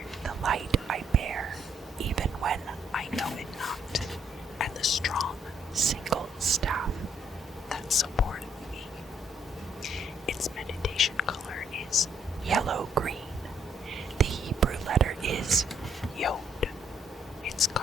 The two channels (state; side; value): normal; both; correlation 0.69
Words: the light I bear, even when I know it not, and the strong single staff that supporteth me. Its meditation color is yellow-green. The Hebrew letter is Yod. Its